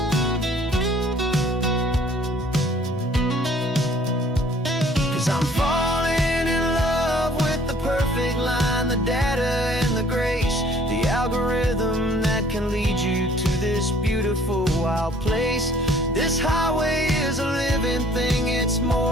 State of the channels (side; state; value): both; normal; correlation 0.57